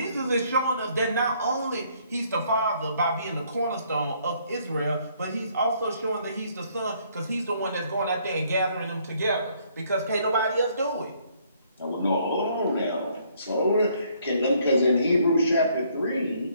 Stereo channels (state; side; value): inverted; both; correlation -0.66